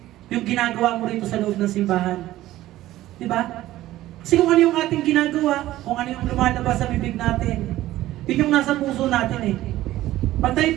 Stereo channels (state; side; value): quieter; left; 15.2 dB